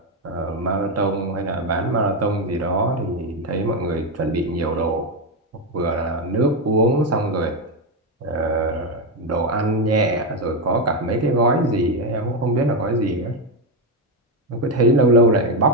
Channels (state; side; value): normal; both; correlation 0.07